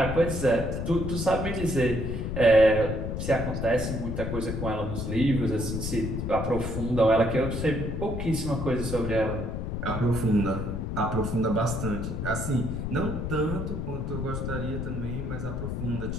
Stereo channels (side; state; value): left; noise; rumble, 3 dB below the sound